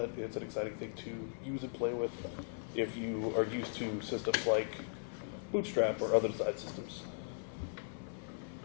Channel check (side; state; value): right; silent; 52 dB below the other